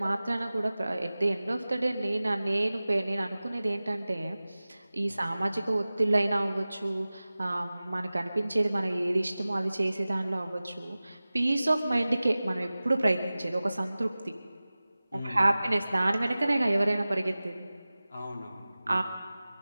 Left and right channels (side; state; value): both; inverted; correlation -0.97